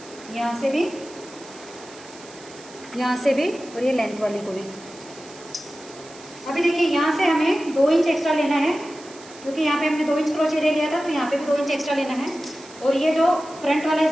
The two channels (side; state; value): right; noise; hiss, 20 dB below the sound